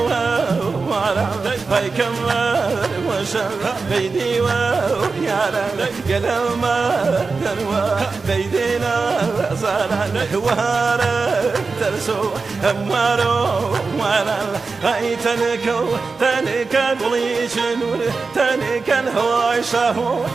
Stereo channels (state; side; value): quieter; left; 4.4 dB